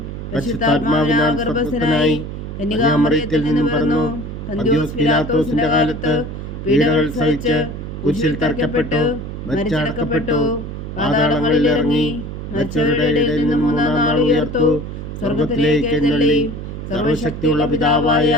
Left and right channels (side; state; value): right; noise; hum, 8 dB below the sound